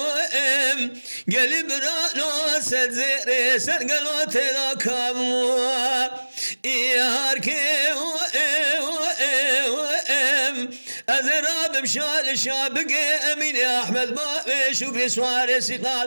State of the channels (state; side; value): inverted; both; correlation -1.00